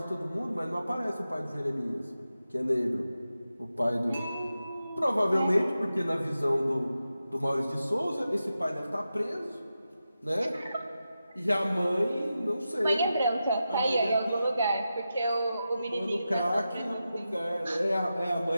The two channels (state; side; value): inverted; both; correlation -0.91